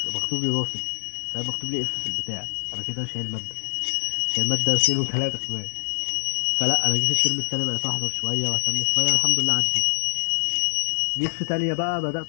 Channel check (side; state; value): right; silent; digital silence